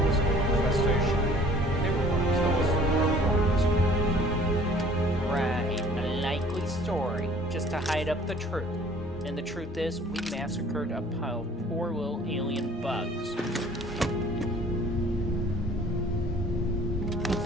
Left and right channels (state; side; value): normal; both; correlation 0.53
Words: was an infestation. They were going to kill us if we weren't. Right, a likely story, just to hide up the truth. And the truth is, we massacred a pile of poor little alien bugs.